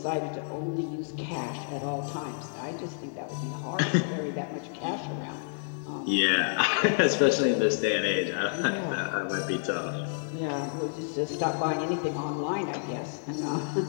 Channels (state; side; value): silent; right; 58 dB below the other